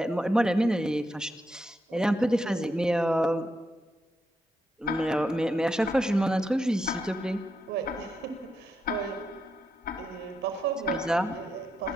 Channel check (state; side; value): normal; both; correlation 0.83